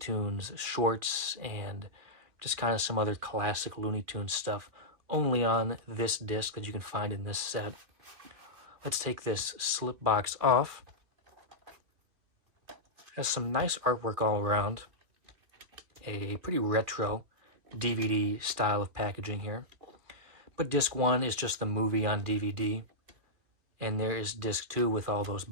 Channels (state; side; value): late; left; 2.6 ms